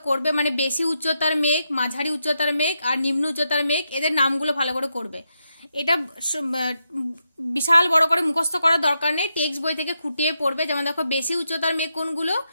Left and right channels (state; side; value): inverted; both; correlation -0.84